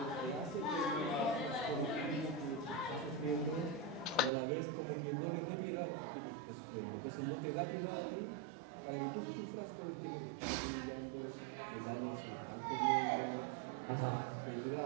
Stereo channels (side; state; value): left; drops out; at 4.3 s